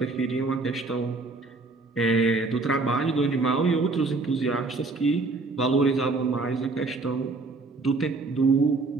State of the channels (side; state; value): left; quieter; 3.6 dB